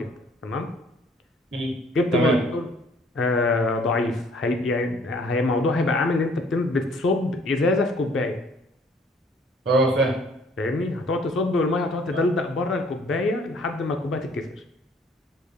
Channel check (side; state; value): both; normal; correlation 0.58